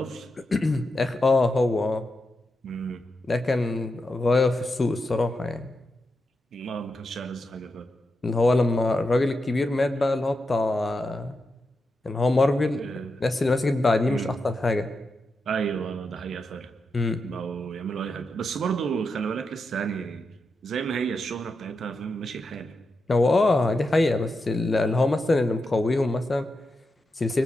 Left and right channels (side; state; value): both; normal; correlation 0.87